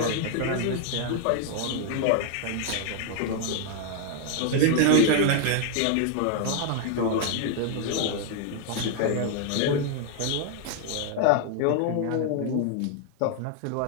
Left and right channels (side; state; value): both; different; correlation 0.00